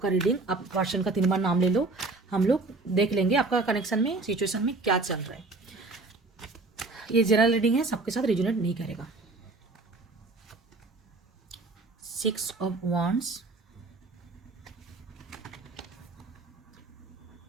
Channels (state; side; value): quieter; left; 3.4 dB